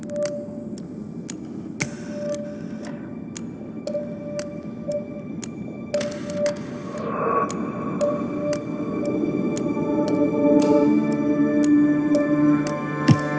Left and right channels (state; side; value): identical; both; correlation 1.00